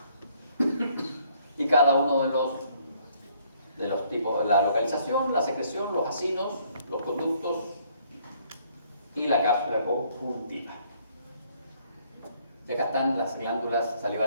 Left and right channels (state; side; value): inverted; both; correlation -0.65